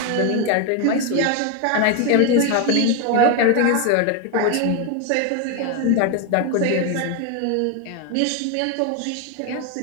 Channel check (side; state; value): both; different; correlation 0.01